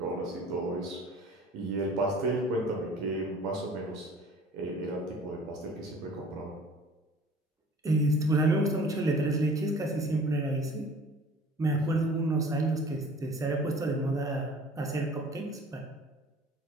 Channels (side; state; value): both; normal; correlation 0.47